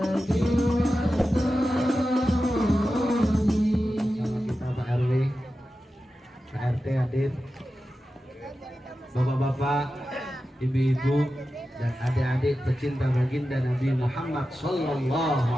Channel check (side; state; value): both; normal; correlation 0.92